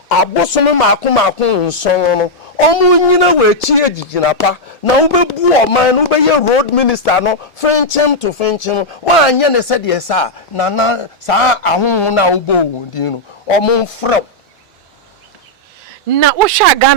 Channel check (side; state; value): both; normal; correlation -0.04